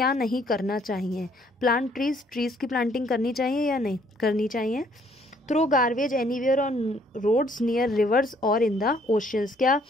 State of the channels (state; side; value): normal; both; correlation 0.64